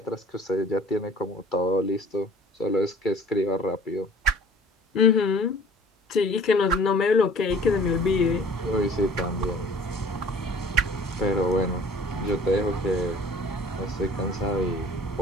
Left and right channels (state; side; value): normal; both; correlation 0.49